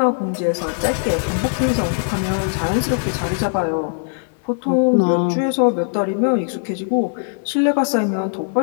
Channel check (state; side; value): silent; right; 66 dB below the other